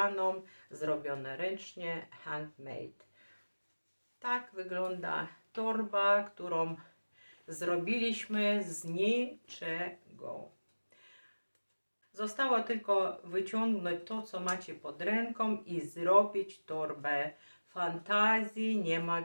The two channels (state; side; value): inverted; both; correlation -1.00